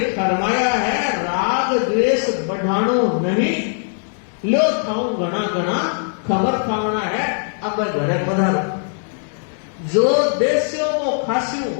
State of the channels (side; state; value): right; silent; 66 dB below the other